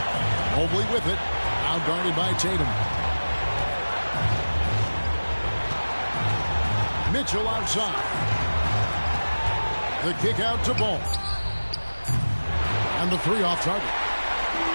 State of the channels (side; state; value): both; inverted; correlation -1.00